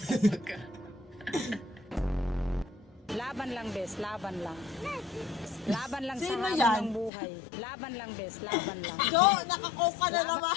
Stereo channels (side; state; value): right; drops out; at 7.1 s